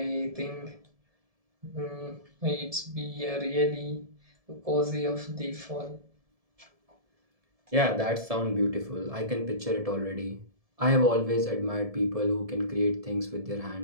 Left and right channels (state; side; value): late; left; 1.7 ms